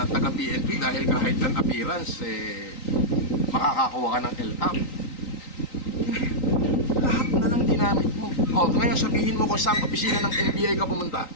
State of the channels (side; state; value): right; late; 3.9 ms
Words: taga-PNP dahil kahit an appearance, makakakuha ka ng L-top. Lahat na lang dinamit mo. O, ngayon sabihin mo kung saan opisina ng NBI ka pumunta.